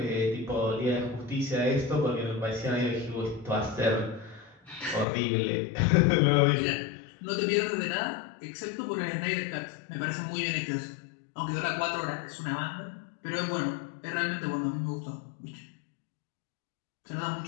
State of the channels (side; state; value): right; drops out; at 5.1 s